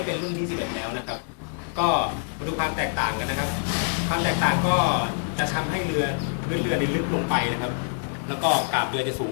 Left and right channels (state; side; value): silent; right; digital silence